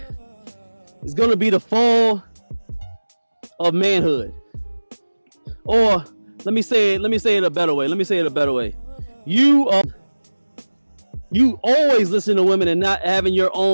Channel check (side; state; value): both; inverted; correlation -1.00